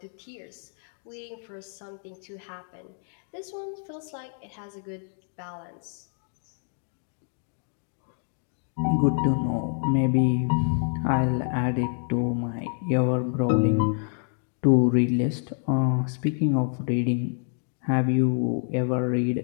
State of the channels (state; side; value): silent; right; 60 dB below the other